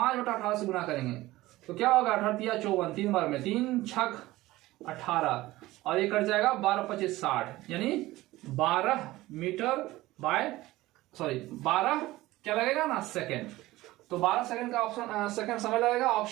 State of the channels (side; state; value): left; quieter; 17.9 dB